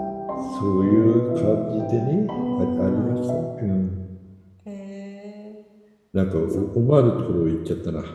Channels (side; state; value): both; identical; correlation 1.00